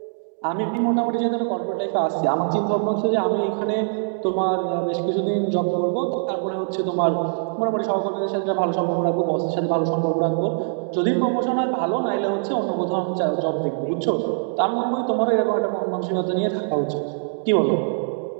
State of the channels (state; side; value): silent; left; digital silence